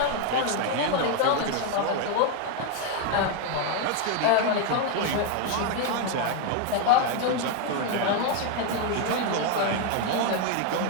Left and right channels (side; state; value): both; different; correlation 0.01